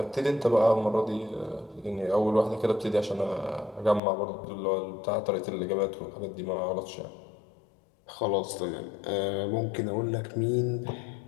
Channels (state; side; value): drops out; right; at 4.0 s